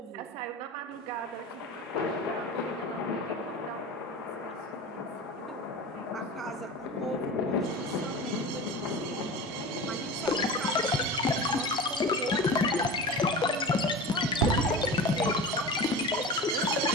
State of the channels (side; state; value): both; normal; correlation 0.31